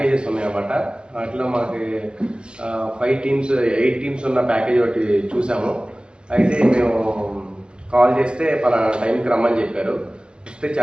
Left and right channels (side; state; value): left; late; 0.053 ms